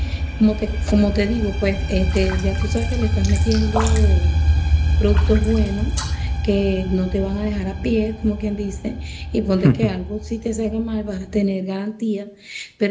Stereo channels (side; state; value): both; identical; correlation 1.00